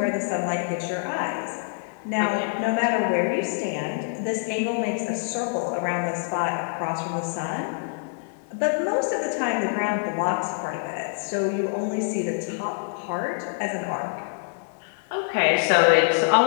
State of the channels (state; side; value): silent; right; 61 dB below the other